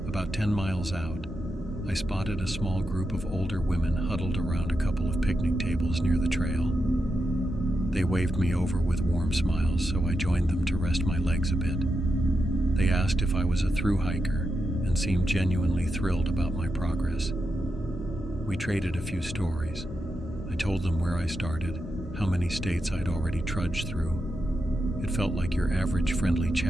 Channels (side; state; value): both; normal; correlation 0.87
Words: About 10 miles out, I spotted a small group of older women huddled around a couple of picnic tables near the trail. They waved me over with warm smiles, so I joined them to rest my legs a bit. They asked if I was a thru hiker and seemed genuinely thrilled about my progress. We traded a few stories. I told them where I started, how many states I'd already trudged through. It felt like your average friendly